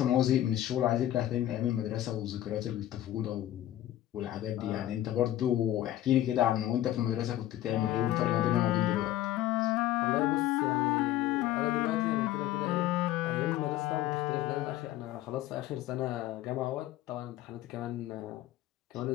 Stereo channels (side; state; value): right; quieter; 13.5 dB